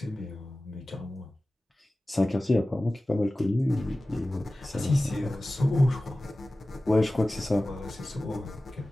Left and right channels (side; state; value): both; normal; correlation 0.96